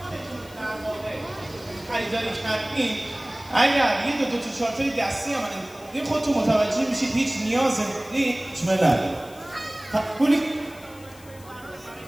در واقع خریداری کردیم، اگر یه دو تا چارتای دستی هم این خودتون متوجه میشید هیچ نیاز هیچ نداره. پولی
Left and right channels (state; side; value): noise; left; hiss, 23 dB below the sound